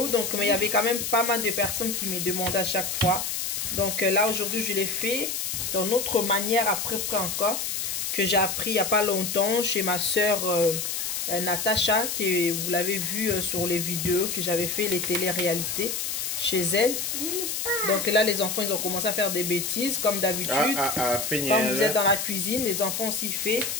Donc, mais il y avait quand même pas mal de personnes qui me demandaient à chaque fois. Donc, là, aujourd'hui, je l'ai fait d'une autre manière après encore. Que j'ai appris il n'y a pas longtemps chez ma soeur Natacha, que vous l'avez vu sur les vidéos que j'avais fait les téléréalités chez elle. Donc là, les enfants, ils ont commencé à faire des bêtises, comme d'habitude. Quand vous êtes dans la cuisine, les enfants aussi font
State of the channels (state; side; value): noise; left; hiss, 2 dB below the sound